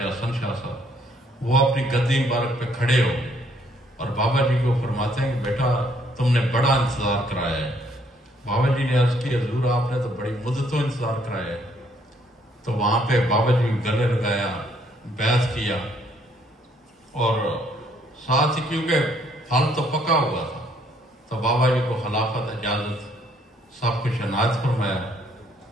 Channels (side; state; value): both; normal; correlation 0.67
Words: حسن شاہ صاحب، وہ اپنی گدی مبارک پہ کھڑے ہو گئے اور بابا جی کو فرماتے ہیں کہ بیٹا تم نے بڑا انتظار کرایا ہے۔ بابا جی نے عرض کی حضور آپ نے تو بڑی مدتوں انتظار کرایا ہے۔ تو وہاں پہ بابا جی گلے لگایا، بیعت کیا، اور ساتھ ہی کیونکہ پھل تو پکا ہوا تھا تو بابا جی کو خلافت اجازت سب کچھ عنایت فرمایا،